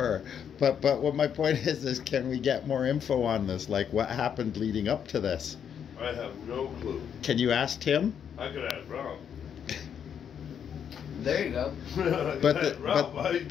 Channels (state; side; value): quieter; right; 8.2 dB